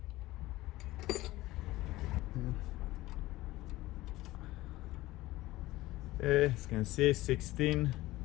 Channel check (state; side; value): quieter; right; 17.7 dB